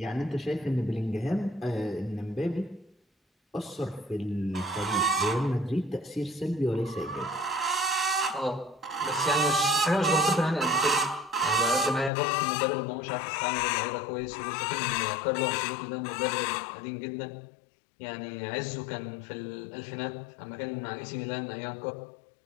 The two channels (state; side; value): drops out; right; at 12.1 s